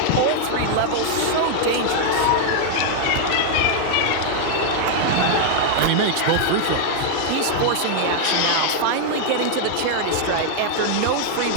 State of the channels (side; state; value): both; different; correlation 0.00